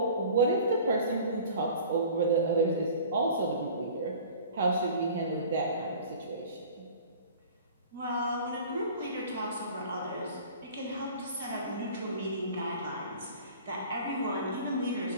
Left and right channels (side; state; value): both; inverted; correlation -0.44